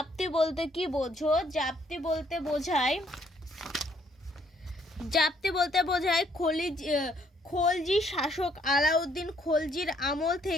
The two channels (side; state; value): both; normal; correlation 0.67